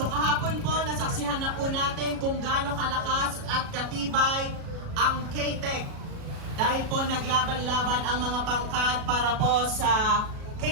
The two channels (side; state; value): left; late; 37 ms